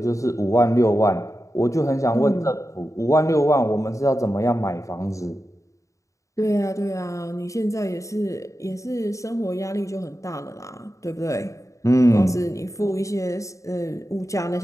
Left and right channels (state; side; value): late; right; 0.15 ms